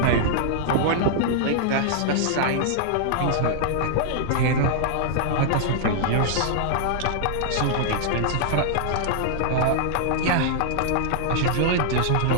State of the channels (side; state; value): both; different; correlation -0.01